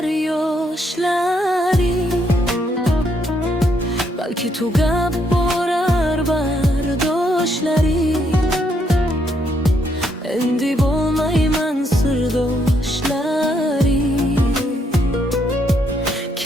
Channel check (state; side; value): normal; both; correlation 0.74